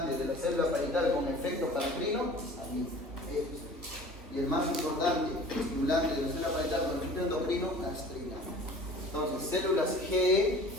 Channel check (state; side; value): normal; both; correlation 0.45